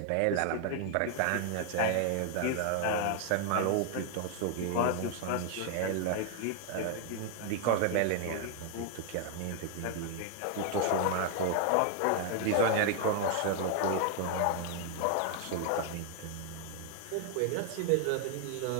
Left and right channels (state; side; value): different; both; correlation 0.00